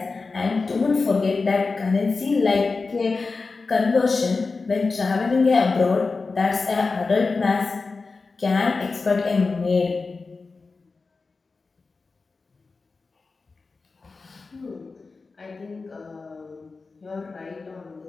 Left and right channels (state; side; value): quieter; right; 4.1 dB